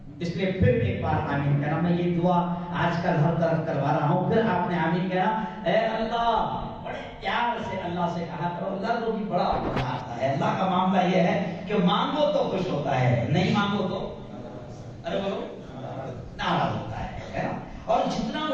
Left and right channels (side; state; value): both; identical; correlation 1.00